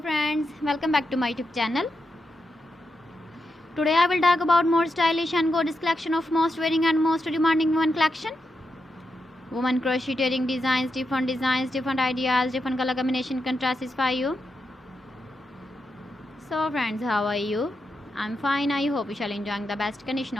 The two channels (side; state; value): both; normal; correlation 0.86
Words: welcome back to my YouTube channel. Today I will talk about more stylish and gorgeous collection of most wearing and most demanding women collection. Women crocheting designs, different ideas, different color combination contrasts for you. So friends, how are you? I'm fine. I hope you shall enjoying the best condition